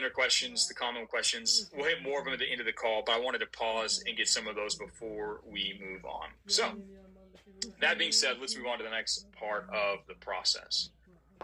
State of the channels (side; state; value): both; identical; correlation 1.00